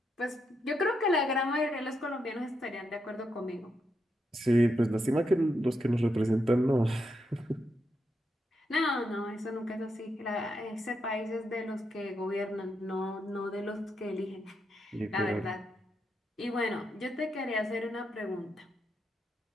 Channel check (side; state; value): both; normal; correlation 0.82